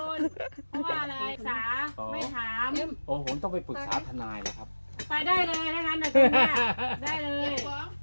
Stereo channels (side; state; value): both; inverted; correlation -1.00